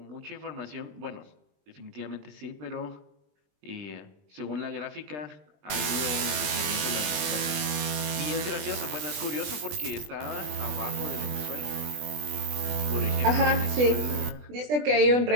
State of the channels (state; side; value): late; left; 20 ms